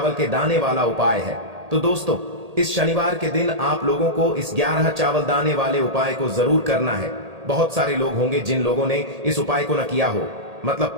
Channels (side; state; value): left; late; 1.8 ms